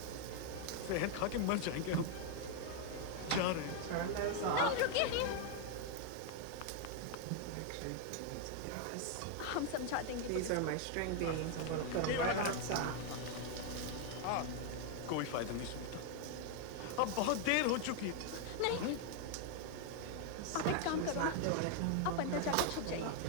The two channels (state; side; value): different; both; correlation 0.00